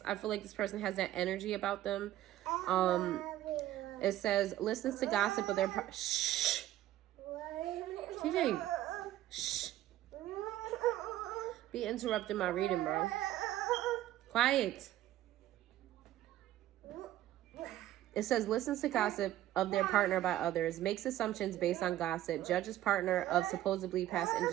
I feel like this person has that energy about them. It says, listens to gossip of their shh. TJ. Shh. Be interrupting my reading, bro. Quiet. It says, listens to gossip of their partner by others, makes assumptions based on gossip, judges partner of supposedly past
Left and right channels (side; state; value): left; quieter; 13.8 dB